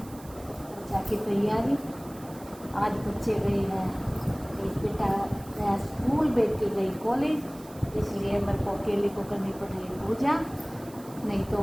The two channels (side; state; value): right; noise; hiss, 21 dB below the sound